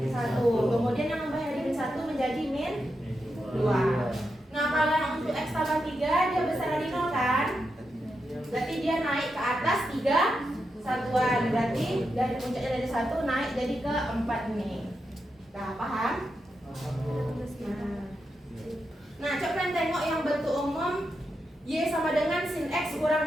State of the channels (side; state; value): both; normal; correlation 0.86